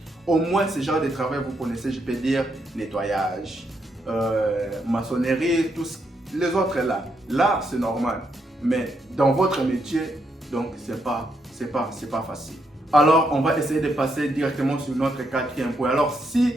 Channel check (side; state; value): both; normal; correlation 0.78